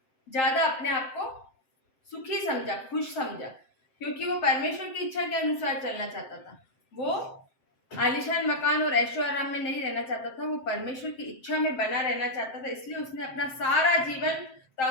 ज्यादा अपने आप को सुखी समझा, खुश समझा, क्योंकि वो परमेश्वर की इच्छा के अनुसार चलना चाहता था। वो आलीशान मकान और ऐशो आराम में नहीं रहना चाहता था, वो परमेश्वर की इच्छा में बना रहना चाहता था। इसलिए उसने अपना सारा जीवन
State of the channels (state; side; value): late; right; 7.7 ms